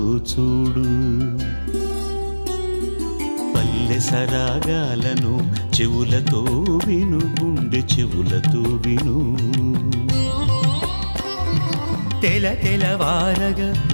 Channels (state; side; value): inverted; both; correlation -1.00